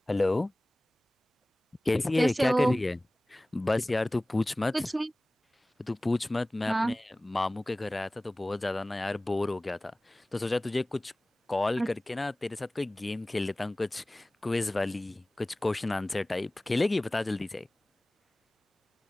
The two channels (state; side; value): normal; both; correlation 0.98